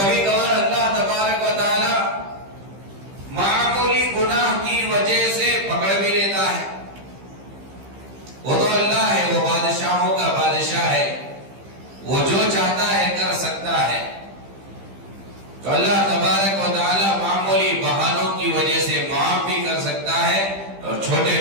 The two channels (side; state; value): left; late; 15 ms